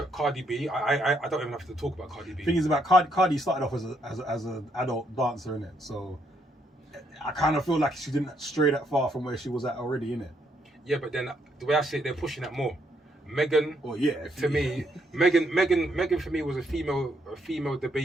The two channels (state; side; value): normal; both; correlation 0.73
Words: Cardi B. I don't even have to talk about Cardi B. Thing is about Cardi started off as an adult dancer in it, so I kind of feel like she didn't stray that far from where she was at already in it. Yeah, but then the way I see it, they're pushing that more. Megan, Oh yeah, to me, Megan for me was a female the